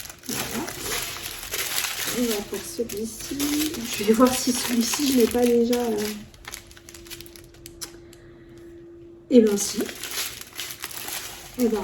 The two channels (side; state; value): both; identical; correlation 1.00